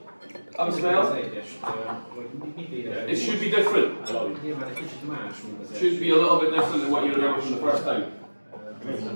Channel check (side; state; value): both; inverted; correlation -1.00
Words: have a smell. It should be different. Should be a little bit different than what you remember from the first time.